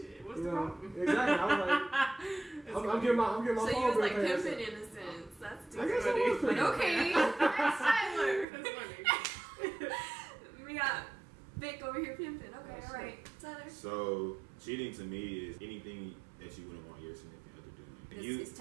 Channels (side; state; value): left; drops out; at 8.5 s